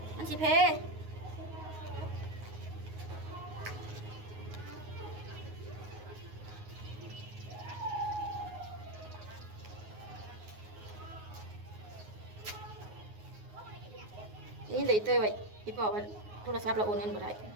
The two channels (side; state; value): left; late; 9.5 ms